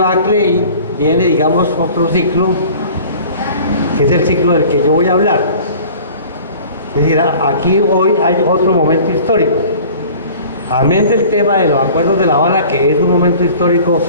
y viene, digamos, otro ciclo, que es el ciclo del que yo voy a hablar. Es decir, aquí hoy hay otro momento histórico. Amén del tema de los acuerdos de La Habana, que es un momento histórico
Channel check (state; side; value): inverted; both; correlation -0.45